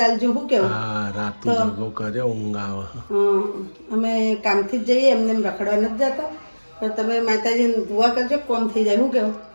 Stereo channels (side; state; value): both; inverted; correlation -1.00